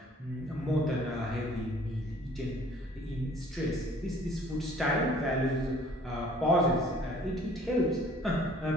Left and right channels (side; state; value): both; normal; correlation 0.54